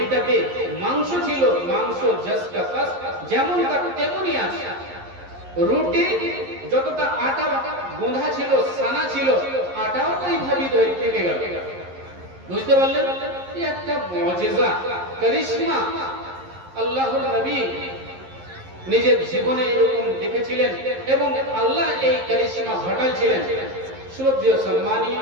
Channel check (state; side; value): late; left; 11 ms